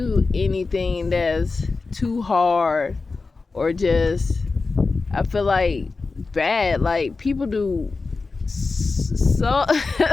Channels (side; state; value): right; quieter; 4.0 dB